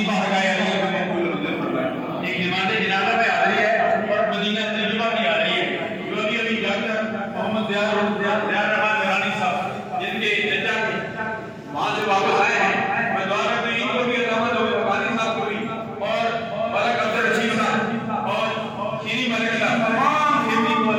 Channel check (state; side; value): identical; both; correlation 1.00